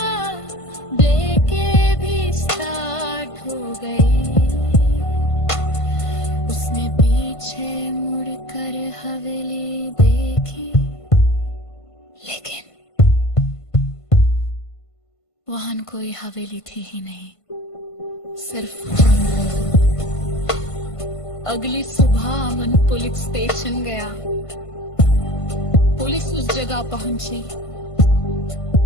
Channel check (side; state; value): right; late; 1.5 ms